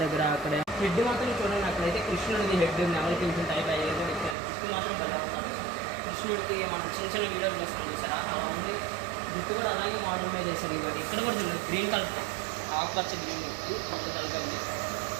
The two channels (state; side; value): drops out; left; at 4.4 s